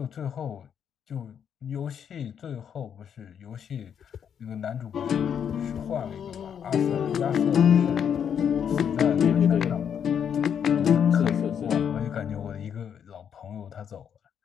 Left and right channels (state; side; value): quieter; right; 8.1 dB